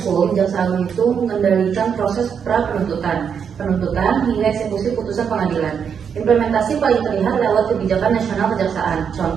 Jaksa Agung itu mengendalikan proses pra-penuntutan, penuntutan hingga eksekusi putusan pengadilan. Implementasi paling terlihat lewat kebijakan nasional kejaksaan.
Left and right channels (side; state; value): left; quieter; 7.2 dB